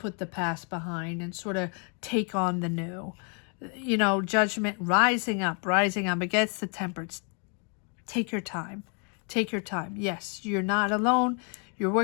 the past behind and sort of take on the new. You know, judgment, rising up against the temperance. Take your time. Take your time. Yes, you're not alone. You're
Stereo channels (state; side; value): quieter; right; 39.3 dB